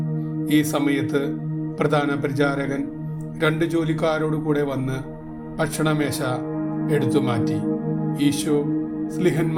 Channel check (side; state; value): both; identical; correlation 1.00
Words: ഈ സമയത്ത് പ്രധാന പരിചാരകൻ 2 ജോലിക്കാരോട് കൂടെ വന്ന് ഭക്ഷണമേശ എടുത്തു മാറ്റി. ഈശോ